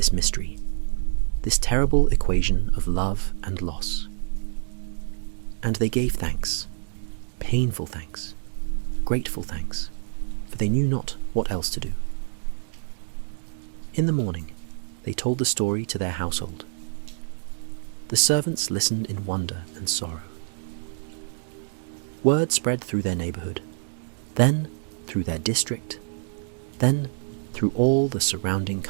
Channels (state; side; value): silent; left; digital silence